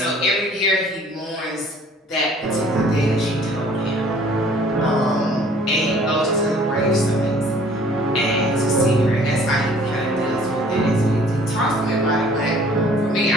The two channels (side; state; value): both; normal; correlation 0.55